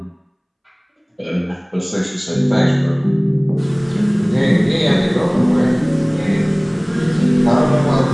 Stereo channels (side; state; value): both; identical; correlation 1.00